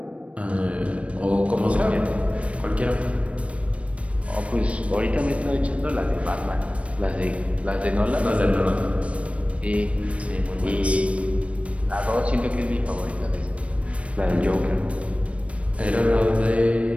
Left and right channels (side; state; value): left; late; 0.063 ms